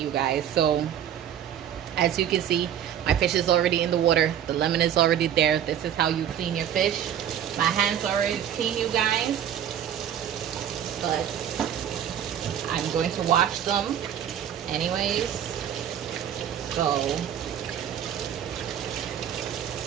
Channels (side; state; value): left; quieter; 9.8 dB